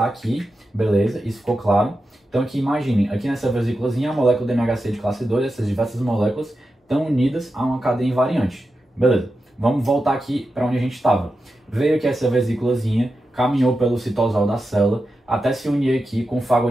aqui, beleza, isso ficou claro. Então, aqui imaginem, aqui nessa vesículazinha, a molécula do MHC de classe 2, essas diversas moléculas estão unidas a uma cadeia invariante. Beleza, vamos voltar aqui para onde a gente estava. Veio aqui essa vesículazinha, caminhou pelo citosol da célula, até se unir aqui com o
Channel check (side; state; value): both; normal; correlation 0.90